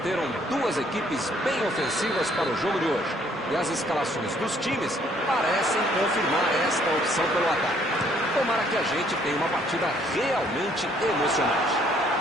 duas equipes bem ofensivas para o jogo de hoje. E as escalações dos times parecem confirmar esta opção pelo ataque. Tomara que a gente tenha uma partida realmente emocionante.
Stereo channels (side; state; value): both; normal; correlation 0.64